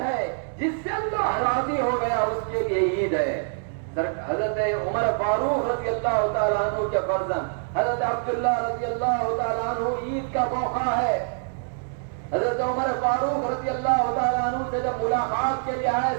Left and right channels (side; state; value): left; silent; digital silence